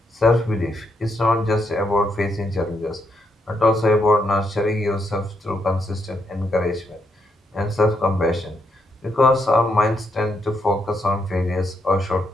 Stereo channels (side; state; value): both; normal; correlation 0.78